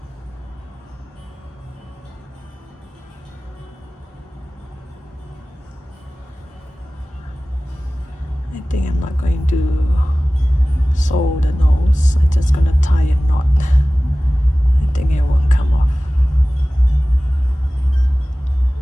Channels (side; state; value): both; normal; correlation 0.97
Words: I think I'm not going to sew the nose. I'm just gonna tie a knot. I think it won't come off.